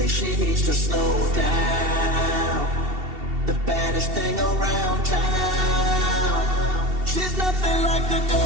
she needs to slow down. The baddest thing around town. She's nothing like the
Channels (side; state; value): left; late; 2.7 ms